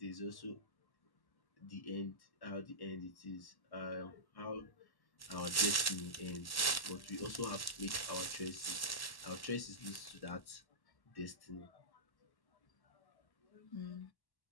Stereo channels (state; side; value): late; right; 1.1 ms